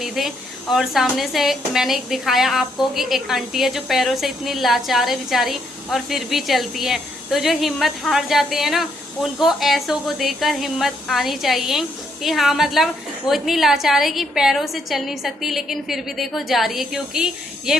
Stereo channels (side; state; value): both; normal; correlation 0.74